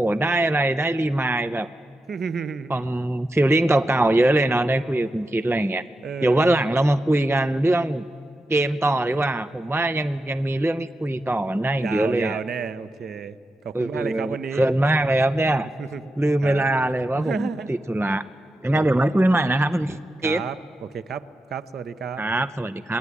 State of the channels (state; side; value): normal; both; correlation 0.89